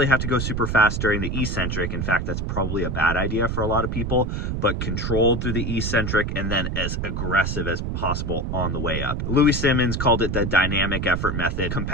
have to go super fast during the eccentric. In fact, that's probably a bad idea for a lot of people, but controlled through the eccentric and then as aggressive as possible on the way up. Louis Simmons called it the dynamic effort method.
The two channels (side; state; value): right; noise; rumble, 2 dB below the sound